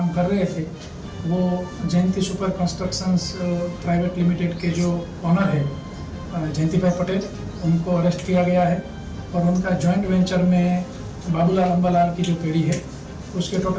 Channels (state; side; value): identical; both; correlation 1.00